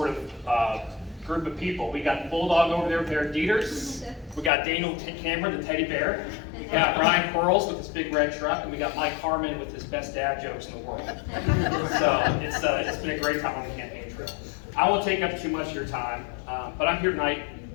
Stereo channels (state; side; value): drops out; right; at 4.5 s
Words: of group of people. We got Bulldog over there with their Dieters. We got Daniel Cameron, the teddy bear. We got Ryan Quarles with his big red truck, and we got Mike Harmon with his best dad jokes in the world. So it's been a great time on the campaign trail. I won't take up too much of your time, but I'm here tonight,